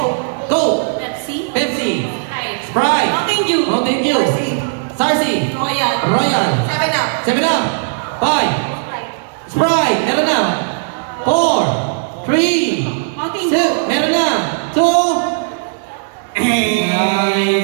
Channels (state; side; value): silent; left; digital silence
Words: Go! Pepsi. Pepsi. Sprite. Sprite. Mountain Dew. Mountain Dew. Sarsi. Royal. Royal. 7-Up. 7-Up. 5. Sprite. Meron na. 4. 3. Mountain Dew. Meron na. 2.